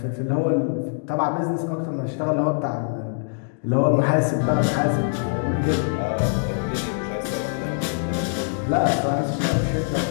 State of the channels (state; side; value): silent; right; digital silence